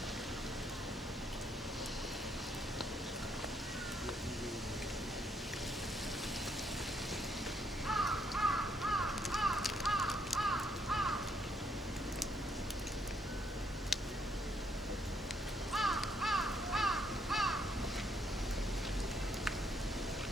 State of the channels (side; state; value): both; normal; correlation 0.72